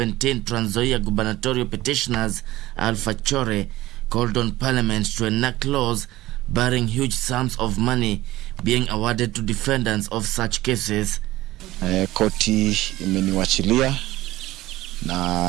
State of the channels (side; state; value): left; quieter; 17.0 dB